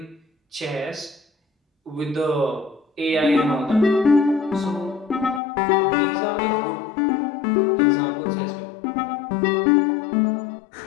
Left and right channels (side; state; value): right; drops out; at 5.4 s